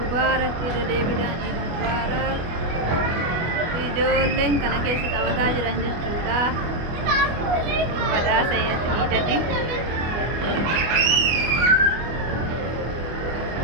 deebiidhaan Eid Mubarak. Ijoolleen kana keessa taphataa jiran jechuudha. Badhaasa Eidati.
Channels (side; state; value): left; late; 25 ms